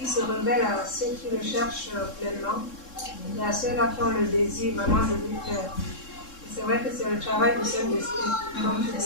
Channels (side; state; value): right; late; 3.7 ms